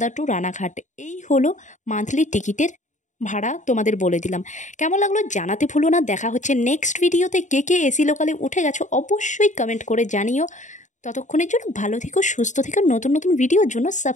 টু রানাঘাট। এই হলো মান্থলি টিকিটের ভাড়া, তোমাদের বলে দিলাম। কেমন লাগলো জানাতে ভুলো না। দেখা হচ্ছে নেক্সট ভিডিওতে। কে কে এসি লোকালে উঠে গেছো অবশ্যই কমেন্ট করে জানিও। ততক্ষণের জন্য ভালো থেকো, সুস্থ থেকো। নতুন নতুন ভিডিওর জন্য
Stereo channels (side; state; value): right; late; 0.36 ms